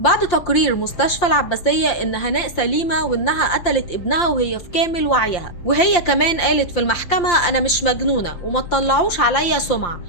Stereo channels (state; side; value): late; right; 5.8 ms